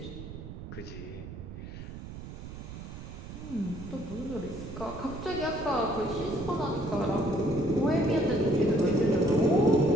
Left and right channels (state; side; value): noise; right; rumble, 11 dB below the sound